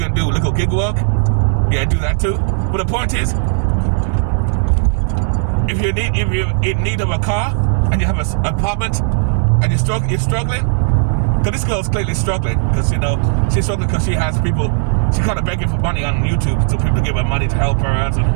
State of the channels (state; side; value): silent; left; 64 dB below the other